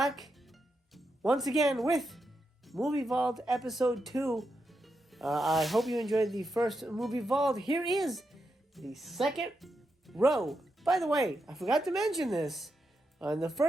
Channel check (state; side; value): normal; both; correlation 0.85